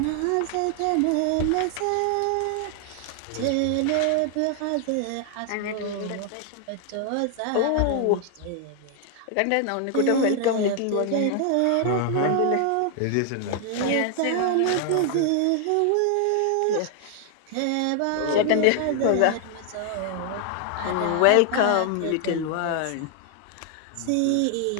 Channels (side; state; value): both; different; correlation 0.00